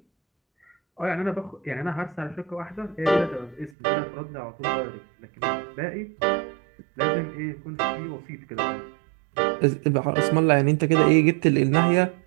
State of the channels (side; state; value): left; drops out; at 3.7 s